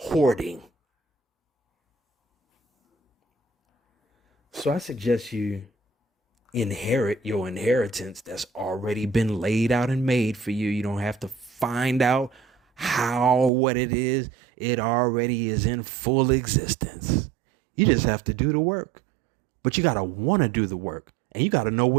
So I suggest you inherit your inheritance that's already been laid out and made for you. You don't have to find out how, what it is. It already is in full existence. You just have to do the work. But you got to want to do the work. And you got to know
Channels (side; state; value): left; drops out; at 13.5 s